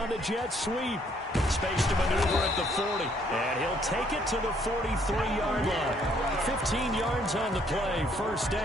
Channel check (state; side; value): normal; both; correlation 0.66